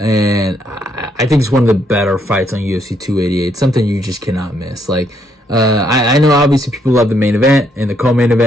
I think it's one of the better fights on UFC 288. Something you just cannot miss. I know obviously people love the main event and the co-main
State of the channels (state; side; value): normal; both; correlation 0.72